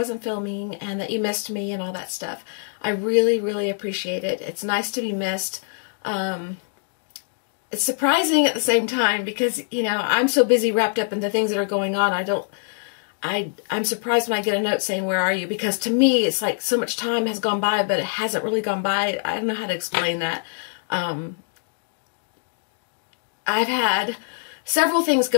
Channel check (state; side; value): silent; right; digital silence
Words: filming, and that you missed me and all that stuff. I really, really appreciate it. It's nice to be missed. It's surprising at the same time because, you know, I'm so busy wrapped up in the things that are going on. I'm surprised when I get a note saying, where are you? Because to me, it's like so much time has gone by, but it hasn't really gone by. I don't know how to explain that. I've had several things